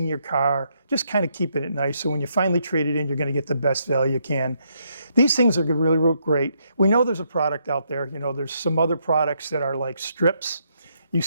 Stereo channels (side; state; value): both; inverted; correlation -0.76